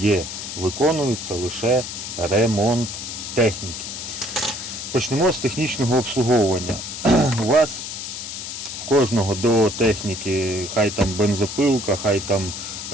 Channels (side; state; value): left; noise; hiss, 7 dB below the sound